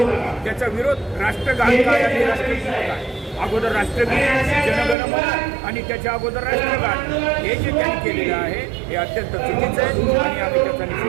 त्याचा विरोध राष्ट्रगान काय आणि राष्ट्रगीत काय, अगोदर राष्ट्रगीत जनगणमन आणि त्याच्या अगोदर राष्ट्रगान, हे जे त्यांनी केलेलं आहे हे अत्यंत चुकीचं आहे आणि आम्ही त्याचा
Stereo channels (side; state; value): left; drops out; at 5.0 s